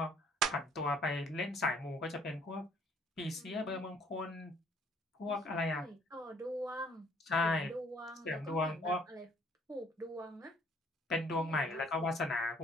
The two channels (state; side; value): normal; both; correlation 0.61